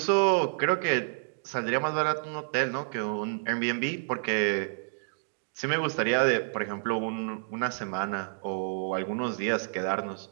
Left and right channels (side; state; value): left; silent; digital silence